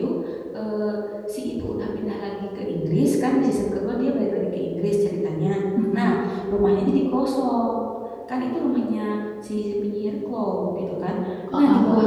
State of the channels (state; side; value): identical; both; correlation 1.00